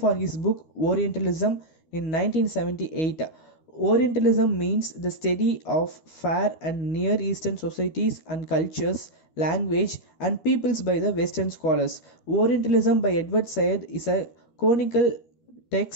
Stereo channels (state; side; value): late; right; 12 ms